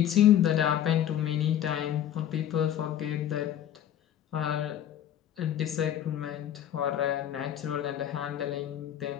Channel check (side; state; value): right; quieter; 10.7 dB